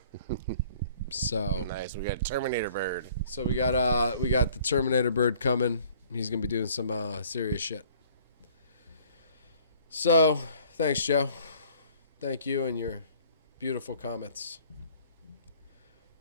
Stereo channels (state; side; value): inverted; both; correlation -0.55